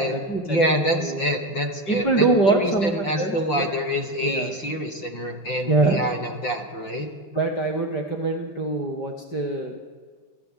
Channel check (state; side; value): late; right; 5.7 ms